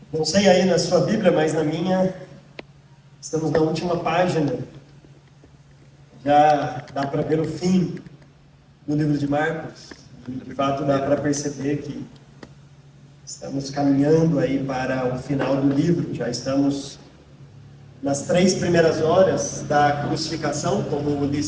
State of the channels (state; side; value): identical; both; correlation 1.00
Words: Não sei aí na sua Bíblia, mas na minha, estamos na última página. Já dá para ver o fim do livro de Marcos. De fato, dá para perceber que estamos caminhando aí para o final do livro. Já estamos nas 3 primeiras horas da crucificação, como o